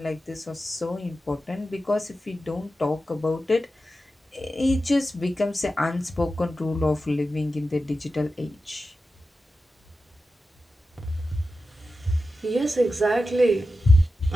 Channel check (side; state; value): both; normal; correlation 0.92